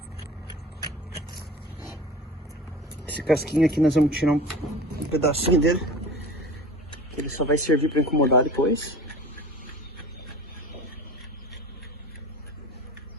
Esse casquinho aqui nós vamos tirar um pedacinho dele, que ele só vai servir para incomodar depois.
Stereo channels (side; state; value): both; normal; correlation 0.38